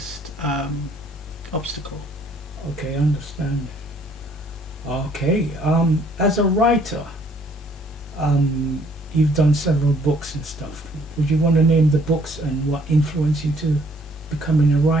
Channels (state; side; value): normal; both; correlation 0.63